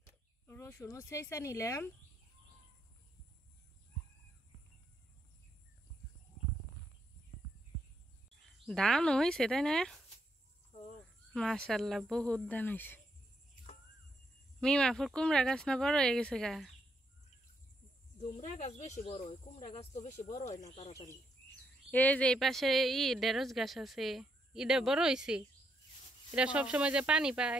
রসুনও সেইসা নিলাম। ধান হয়েছে তাই না? মাশাআল্লাহ বহুত ধান হয়েছে। মিমাফুর কুমড়া গাছ না বড় হয়ে গেছে গা? কুমড়া গাছ বেশি বড় হয়, কুমড়া গাছ তো বেশি বড় হয় না তাড়াতাড়ি। এই যে এই পাশে ঢেঁড়স গাছ আছে, এটা বড় হয়েছে। এটা সবসময় যে পানি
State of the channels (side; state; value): both; normal; correlation 0.77